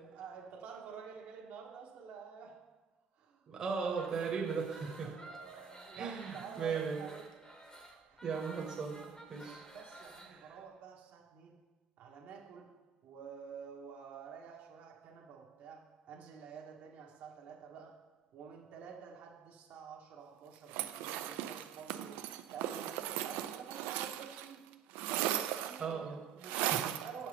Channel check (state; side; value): quieter; left; 7.6 dB